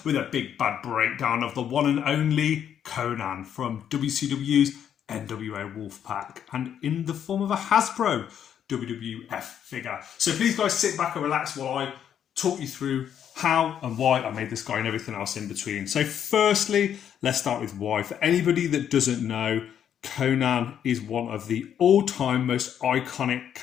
with a big bad breakdown of the one and only Konan from WCW's NWO Wolfpac and in the form of a Hasbro WWF figure. So please guys sit back and relax while I talk you through how and why I made this guy and everything else in between. So firstly, let's start with why. For anybody that doesn't know, Konan is one of the all-time most iconic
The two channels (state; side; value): quieter; right; 9.2 dB